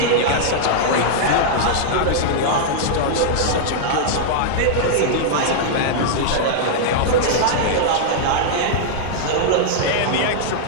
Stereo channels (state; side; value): different; both; correlation -0.01